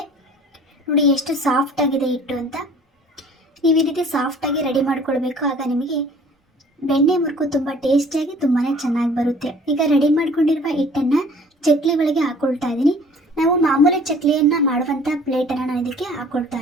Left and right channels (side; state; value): both; normal; correlation 0.51